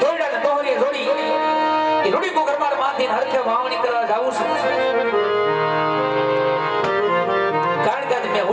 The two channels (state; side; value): identical; both; correlation 1.00